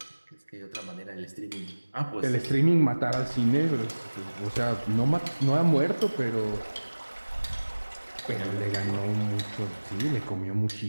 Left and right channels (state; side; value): inverted; both; correlation -1.00